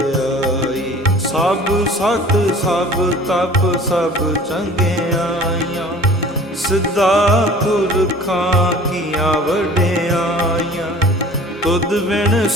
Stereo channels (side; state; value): both; normal; correlation 0.46